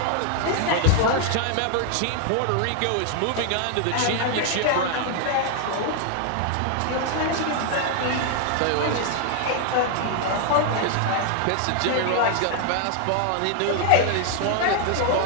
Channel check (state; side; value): different; both; correlation 0.00